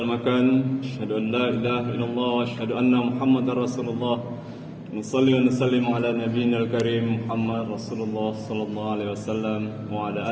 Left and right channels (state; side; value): identical; both; correlation 1.00